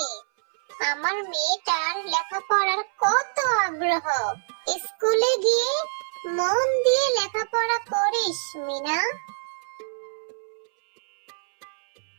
আমার মেয়েটার লেখাপড়ার কত আগ্রহ। স্কুলে গিয়ে মন দিয়ে লেখাপড়া করিস মিনা।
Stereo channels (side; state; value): left; silent; 62 dB below the other